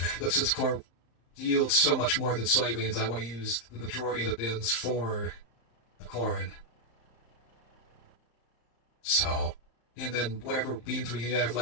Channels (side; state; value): right; late; 34 ms